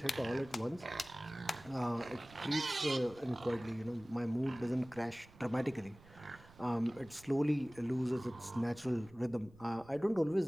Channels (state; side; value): noise; right; rumble, 23 dB below the sound